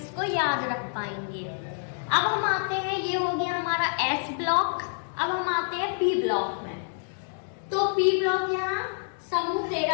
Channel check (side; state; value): right; silent; digital silence